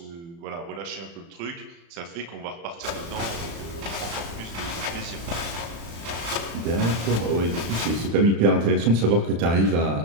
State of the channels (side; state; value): left; late; 35 ms